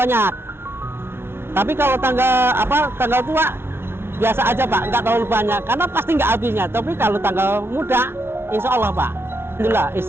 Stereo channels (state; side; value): late; left; 0.12 ms